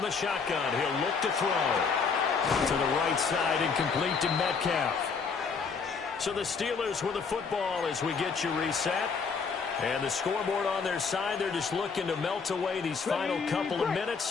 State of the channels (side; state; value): right; quieter; 5.3 dB